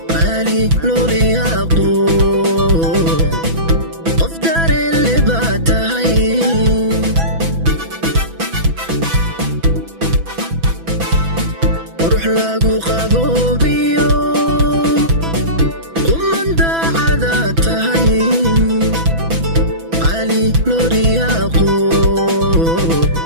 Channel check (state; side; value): late; left; 6.0 ms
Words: qaali loo riyaaqo qof dareen leh baa tahay ruux lagu qaboobiyo umanda cada tahay qaali loo riyaaqo